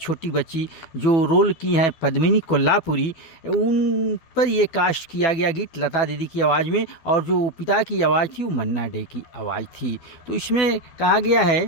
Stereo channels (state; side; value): late; right; 12 ms